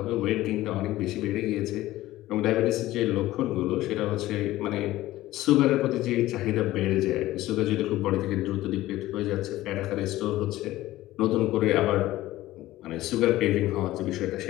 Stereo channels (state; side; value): quieter; right; 16.1 dB